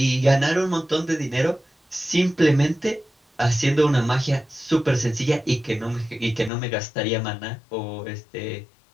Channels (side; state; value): right; drops out; at 6.5 s